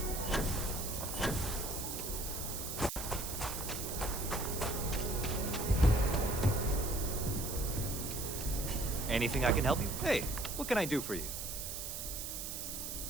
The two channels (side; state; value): right; noise; hiss, 5 dB below the sound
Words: Anything I can help you? Hey, what can I do for you?